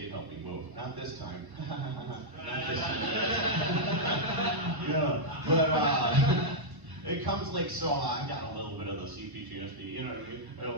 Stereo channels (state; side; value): late; left; 1.1 ms